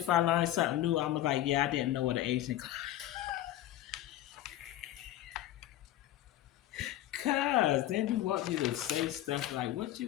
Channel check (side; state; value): right; quieter; 13.6 dB